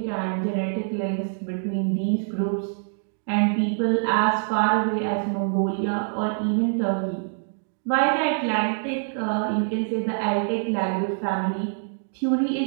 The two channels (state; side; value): silent; left; digital silence